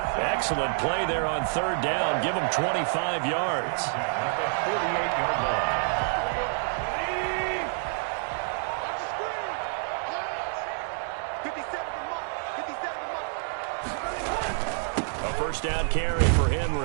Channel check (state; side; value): silent; left; 59 dB below the other